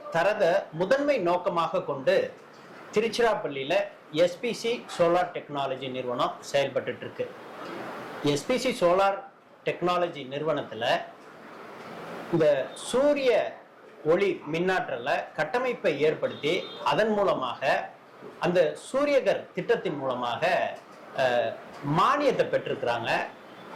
தரத முதன்மை நோக்கமாக கொண்டு திருச்சிராப்பள்ளியில் எஸ்பிசி சோலார் டெக்னாலஜி நிறுவனம் செயல்பட்டு இருக்கு. எஸ்பிசி சோலார் டெக்னாலஜி நிறுவனத்தில் இந்த சூரிய ஒளி மின்னாற்றலை கட்டமைப்பை ஏற்படுத்தி அதன் மூலமாக அந்த சூரியகர் திட்டத்தின் மூலமாக மானியத்தை பெற்றிருக்கிறாங்க.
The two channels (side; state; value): both; identical; correlation 1.00